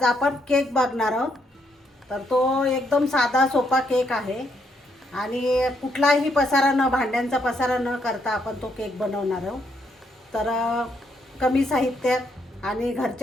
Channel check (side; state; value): both; normal; correlation 0.74